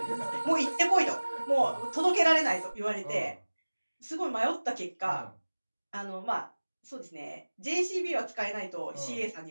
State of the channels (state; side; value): inverted; both; correlation -1.00